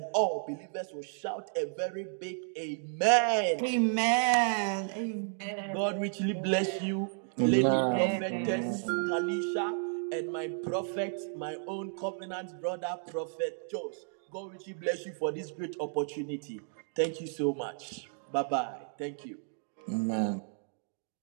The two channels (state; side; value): silent; left; 56 dB below the other